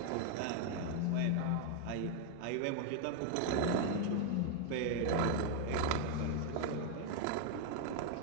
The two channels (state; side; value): different; both; correlation 0.00